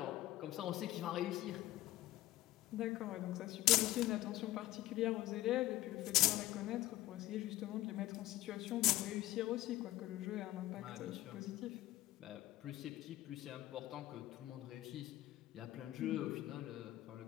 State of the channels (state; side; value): quieter; right; 15.9 dB